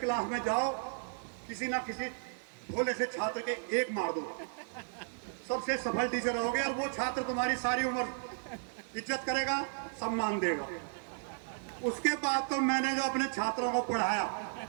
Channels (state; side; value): silent; left; digital silence